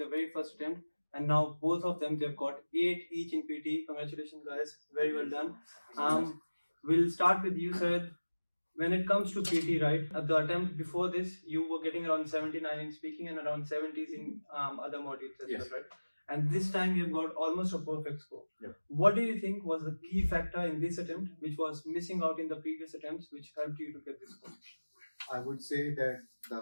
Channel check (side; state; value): both; inverted; correlation -1.00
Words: very first attempt. And now both of them, they've got 8 each in PT. Congratulations, guys. Very well done. We'll start with you, Syed. When it comes to PT, right, at the attempt before this, you were getting around 79 in speaking and around 70s in other modules as well, right? And this time you've got almost a perfect score. Yep. What do you think was the key factor in this attempt, which was missing out in the previous attempts, which helped you to get this score? I would say that